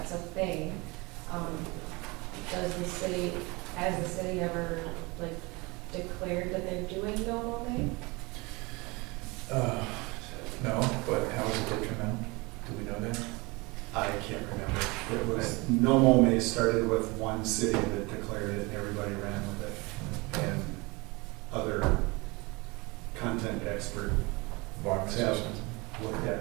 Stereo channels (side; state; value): left; quieter; 25.6 dB